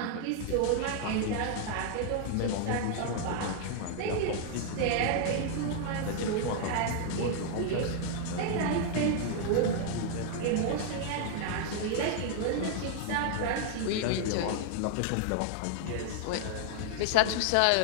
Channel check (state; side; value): different; both; correlation 0.00